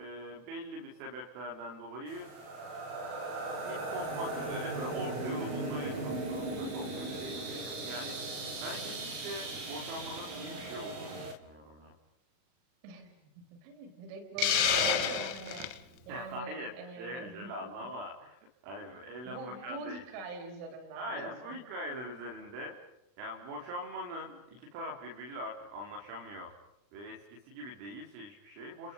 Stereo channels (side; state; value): left; late; 40 ms